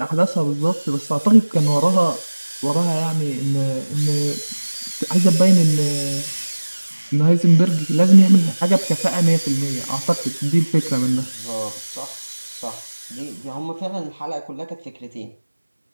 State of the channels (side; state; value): both; inverted; correlation -1.00